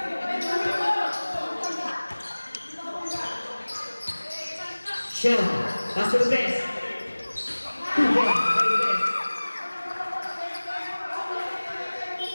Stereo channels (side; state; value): both; inverted; correlation -1.00